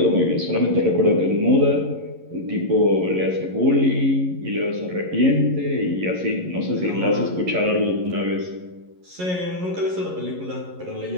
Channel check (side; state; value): left; late; 11 ms